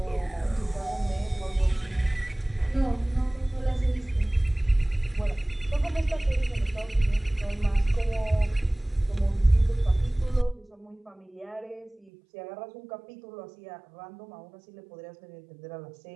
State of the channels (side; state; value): left; drops out; at 12.1 s